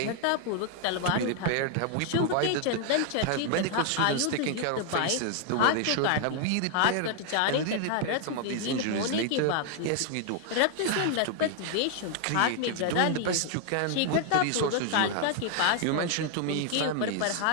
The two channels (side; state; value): both; different; correlation 0.00